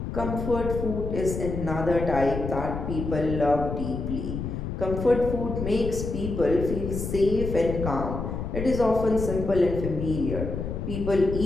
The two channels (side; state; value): left; noise; rumble, 5 dB below the sound